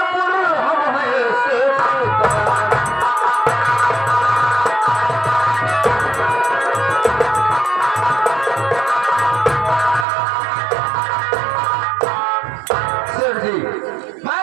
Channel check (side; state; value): left; drops out; at 10.1 s